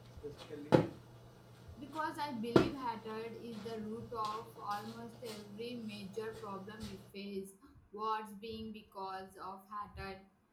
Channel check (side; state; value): both; identical; correlation 1.00